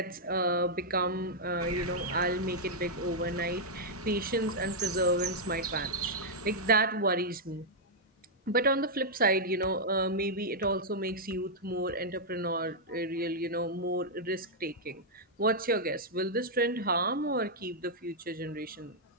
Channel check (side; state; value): both; normal; correlation -0.05